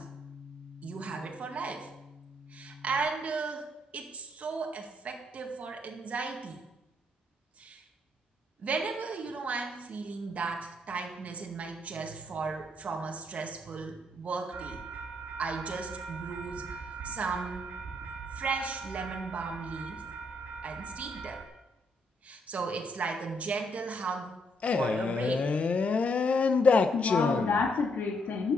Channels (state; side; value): normal; both; correlation 0.73